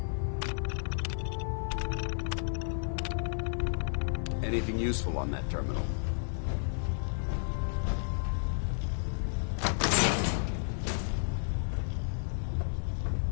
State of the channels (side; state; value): right; silent; 56 dB below the other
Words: Anything useful on that terminal?